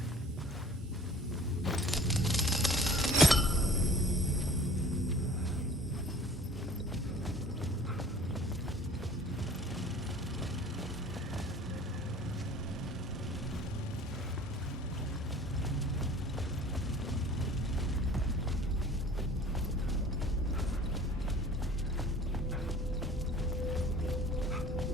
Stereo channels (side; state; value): both; normal; correlation 0.48